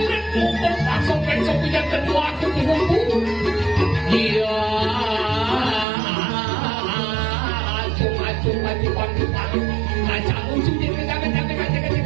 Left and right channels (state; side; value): drops out; left; at 5.9 s